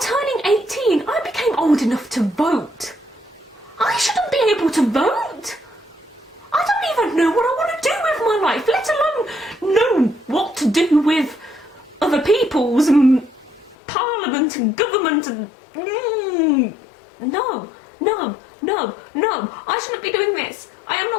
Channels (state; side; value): drops out; right; at 13.8 s